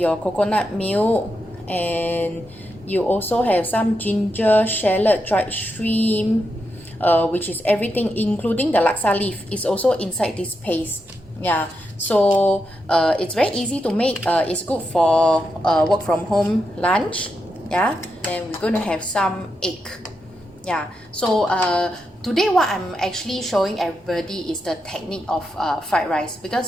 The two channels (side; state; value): both; normal; correlation 0.85